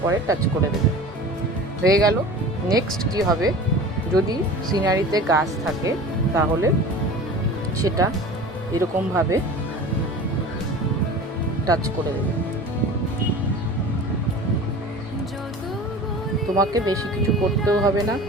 পরে টাচ করে দেবে। হয়ে গেল। নেক্সট কি হবে, যদি সিনারিতে গাছ থাকে তাহলে সেটা এরকমভাবে টাচ করে দেবে। তোমাকে বেশি কিছু করতেও হবে না,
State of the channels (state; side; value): normal; both; correlation 0.38